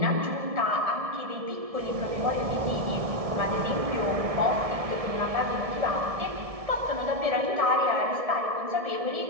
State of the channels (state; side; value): late; left; 1.7 ms